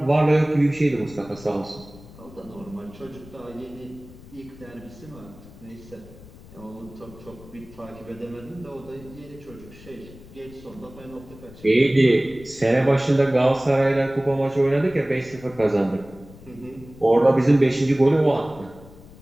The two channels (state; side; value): noise; left; rumble, 20 dB below the sound